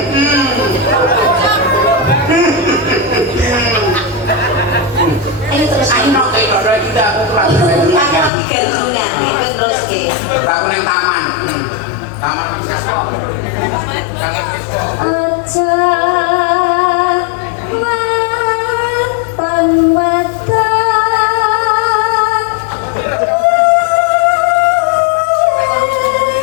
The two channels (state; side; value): drops out; right; at 8.3 s